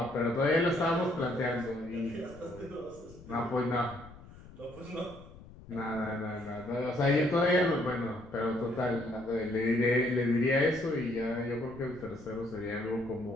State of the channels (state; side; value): noise; left; rumble, 19 dB below the sound